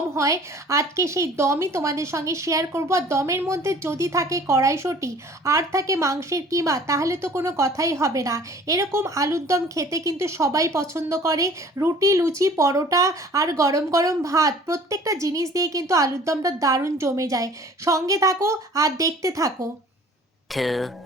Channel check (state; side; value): normal; both; correlation 0.49